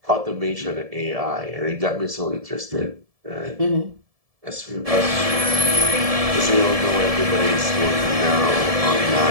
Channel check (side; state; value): left; late; 1.7 ms